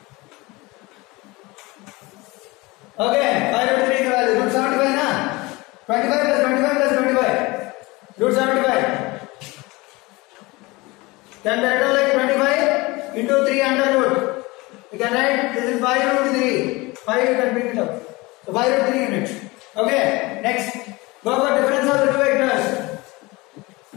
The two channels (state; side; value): quieter; right; 23.0 dB